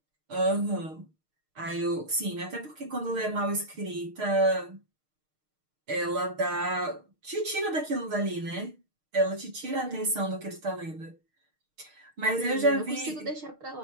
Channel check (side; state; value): left; late; 6.5 ms